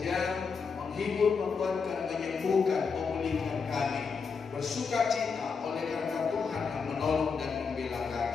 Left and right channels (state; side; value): quieter; right; 5.4 dB